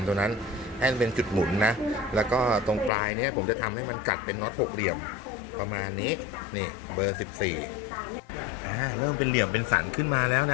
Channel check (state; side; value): drops out; right; at 2.9 s